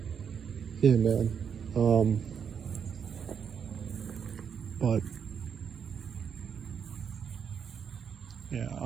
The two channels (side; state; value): left; quieter; 7.2 dB